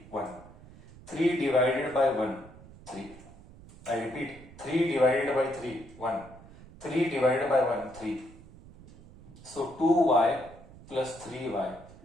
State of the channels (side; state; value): right; noise; rumble, 20 dB below the sound